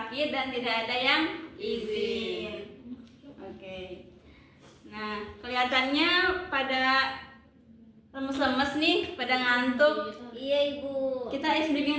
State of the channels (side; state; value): both; identical; correlation 1.00